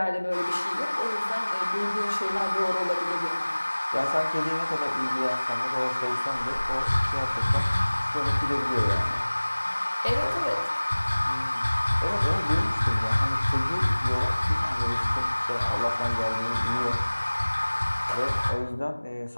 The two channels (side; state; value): both; inverted; correlation -1.00